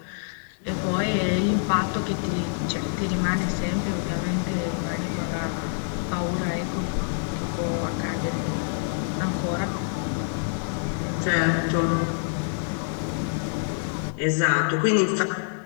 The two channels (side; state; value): right; silent; digital silence